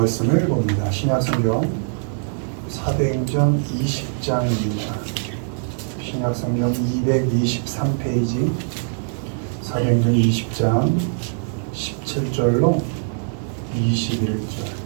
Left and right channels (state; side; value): silent; left; digital silence